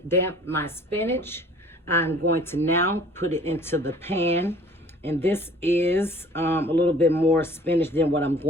damp my spinach. I'm going to now put it into the pan. And this is a little bit more spinach than what I'm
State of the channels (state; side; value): normal; both; correlation 0.51